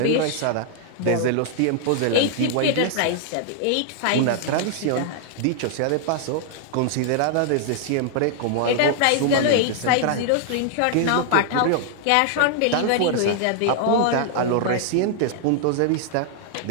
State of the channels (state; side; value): different; both; correlation 0.00